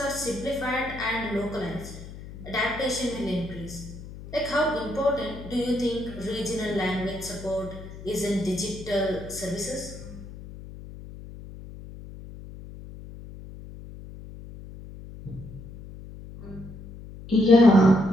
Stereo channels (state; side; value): noise; left; hum, 14 dB below the sound